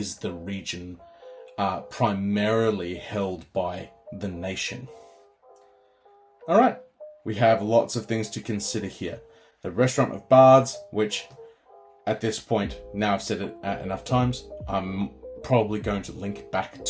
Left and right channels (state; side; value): identical; both; correlation 1.00